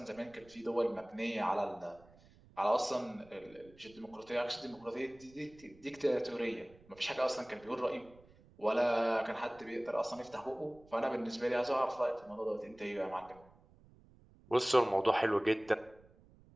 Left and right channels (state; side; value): noise; right; rumble, 26 dB below the sound